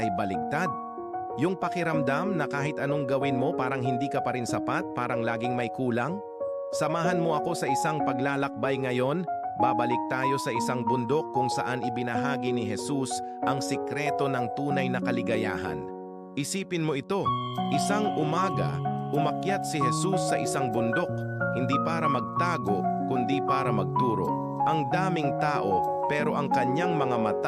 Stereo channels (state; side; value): identical; both; correlation 1.00